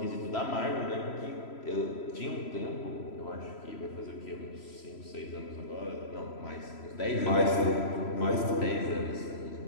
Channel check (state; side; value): late; right; 3.0 ms